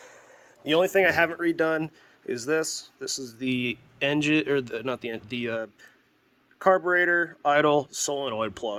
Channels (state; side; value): identical; both; correlation 1.00